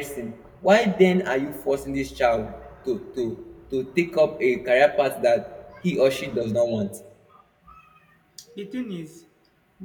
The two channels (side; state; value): both; identical; correlation 1.00